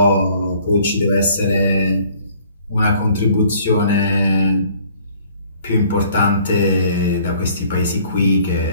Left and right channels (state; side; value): inverted; both; correlation -0.57